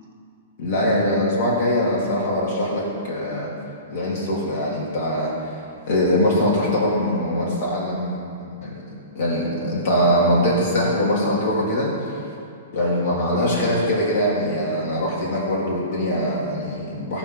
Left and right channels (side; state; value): both; inverted; correlation -0.38